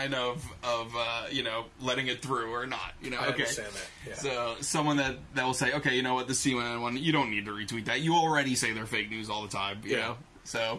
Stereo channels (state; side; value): identical; both; correlation 1.00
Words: of letting it through or not. I understand that. Yeah. So someone that will say, okay, you know what, the CNN one, you don't need to retweet that. You already say they're fake news all the time. You know.